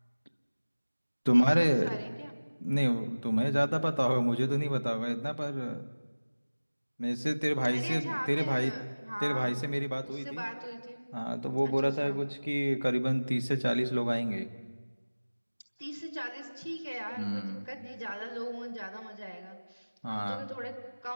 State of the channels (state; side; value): inverted; both; correlation -1.00